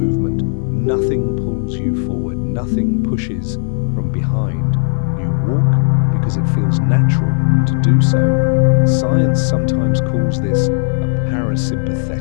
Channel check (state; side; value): silent; right; 61 dB below the other